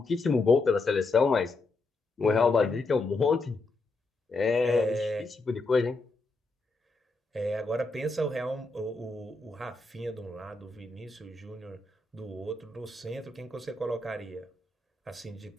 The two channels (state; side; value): quieter; right; 3.4 dB